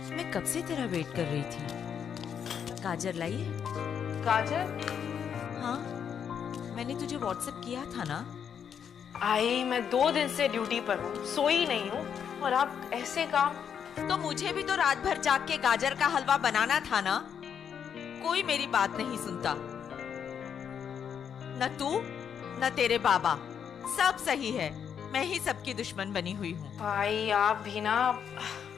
मैं कब से तेरा वेट कर रही थी। गाजर लाई है? गाजर? हाँ, मैंने तुझे व्हाट्सएप किया था ना। आई, मैं 2 दिन से ड्यूटी पर हूँ, सोई नहीं हूँ, और आप ऐसे काम। तो मुझे भी तो रात भर जाग के गाजर का हलवा बनाना था ना। कोई मेरी बात नहीं सुनता, न तू न तेरे बाबा। सब सही है, मैं ही सबकी दुश्मन बनी हुई हूँ। भाई आप भी ना।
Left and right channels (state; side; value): quieter; right; 7.9 dB